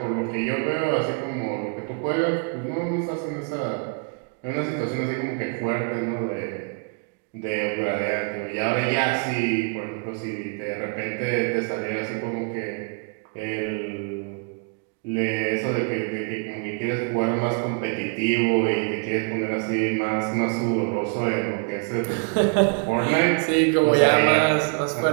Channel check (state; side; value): quieter; left; 35.4 dB